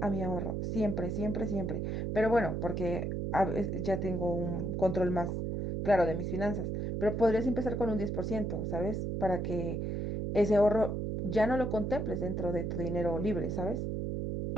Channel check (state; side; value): noise; right; hum, 2 dB below the sound